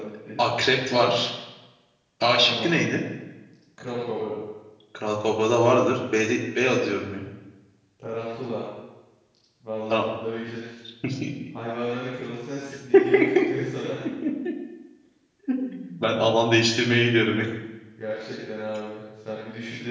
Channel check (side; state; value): both; identical; correlation 1.00